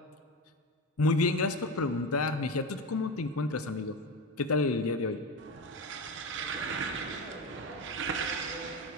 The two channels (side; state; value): both; normal; correlation 0.21